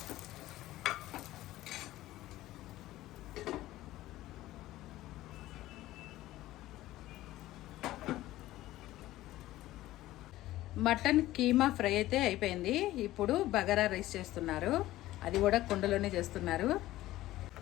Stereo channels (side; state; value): right; quieter; 15.9 dB